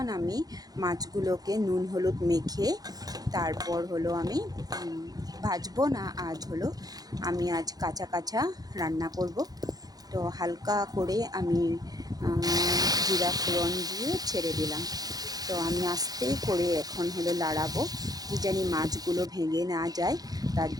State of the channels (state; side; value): late; left; 0.19 ms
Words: আমি মাছগুলোকে নুন হলুদ মেখে তারপর হলো আমি ভাজবো না, আমি আজ কাঁচা কাঁচা রান্না করব। তো হালকা করে আমি জিরা ফোড়ন দিয়ে ছেড়ে দিলাম। তো আমি আস্তে করে এখন হলো লাড়াবো, কি জানি মাছগুলো ভেঙে না যায়, তার